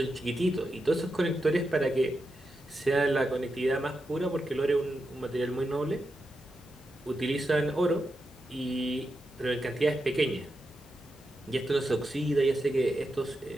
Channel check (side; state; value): both; normal; correlation 0.87